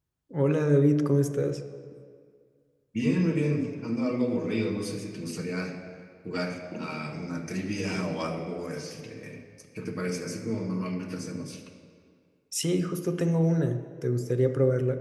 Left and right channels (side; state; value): both; identical; correlation 1.00